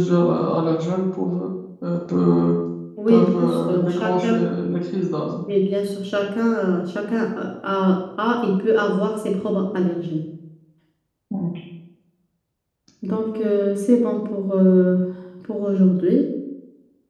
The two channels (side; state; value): both; identical; correlation 1.00